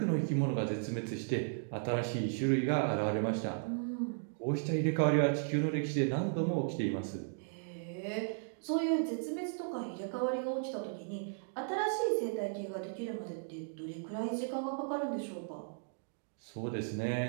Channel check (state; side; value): silent; left; digital silence